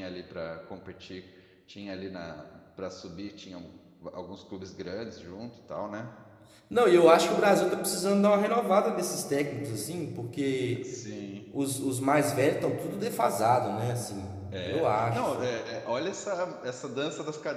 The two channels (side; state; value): both; identical; correlation 1.00